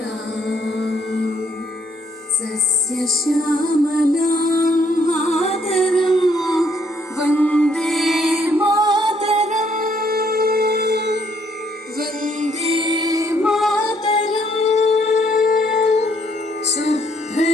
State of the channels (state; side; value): normal; both; correlation 0.69